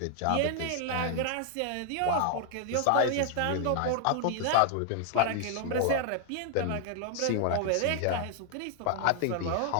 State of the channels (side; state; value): both; different; correlation 0.00